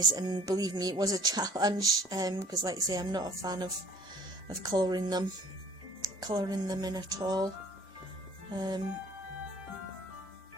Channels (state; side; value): normal; both; correlation 0.52